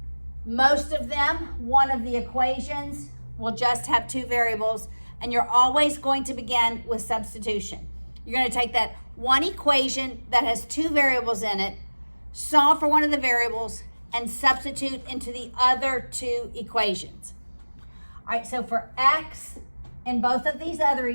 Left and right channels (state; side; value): inverted; both; correlation -1.00